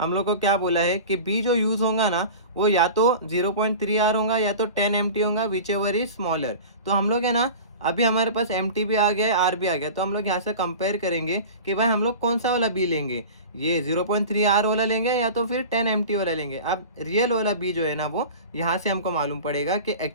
हम लोग को क्या बोला है कि बी जो यूज़ होगा ना वो या तो 0.3 आर होगा या तो 10 एम टी होगा, विच एवर इज स्मॉलर। तो हम लोग है ना, अभी हमारे पास एम टी भी आ गया है, आर भी आ गया, तो हम लोग यहाँ से कंपेयर करेंगे कि भाई हम लोग कौन सा वाला बी लेंगे, ये 0.3 आर वाला लेंगे या तो फिर 10 एम टी वाला लेंगे। अब रियल वाला बी जो है ना वो यहाँ से हमको मालूम पड़ेगा कि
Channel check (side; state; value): both; inverted; correlation -0.35